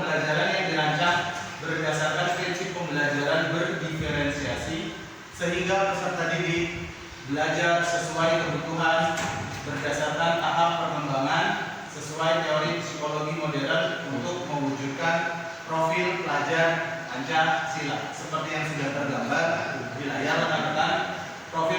yang dirancang berdasarkan prinsip pembelajaran berdiferensiasi, sehingga peserta didik belajar sesuai kebutuhan berdasarkan tahap perkembangan sesuai teori psikologi modern untuk mewujudkan profil pelajar Pancasila. Seperti yang sudah tergambar di layar rekan-rekan,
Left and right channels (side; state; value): both; identical; correlation 1.00